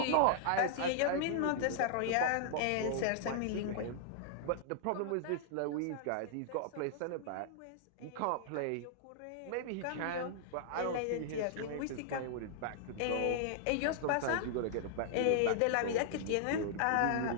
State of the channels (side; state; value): both; different; correlation -0.01